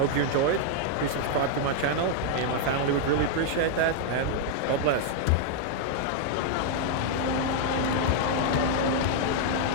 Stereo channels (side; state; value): both; different; correlation 0.00